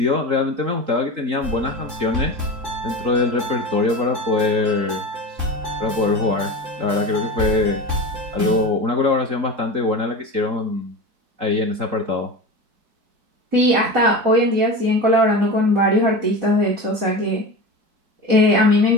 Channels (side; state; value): left; late; 4.6 ms